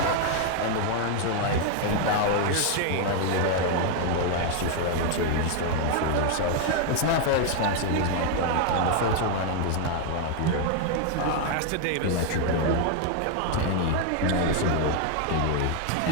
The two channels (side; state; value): both; different; correlation 0.00